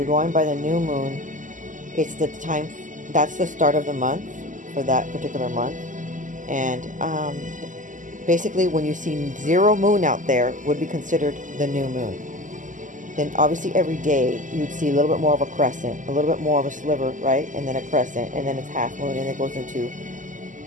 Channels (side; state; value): left; late; 0.37 ms